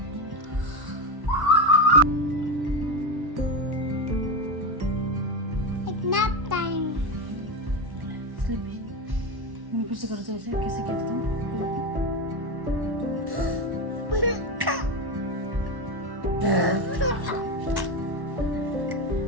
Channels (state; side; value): late; left; 1.1 ms